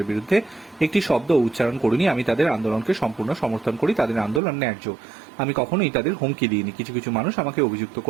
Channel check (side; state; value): left; drops out; at 4.4 s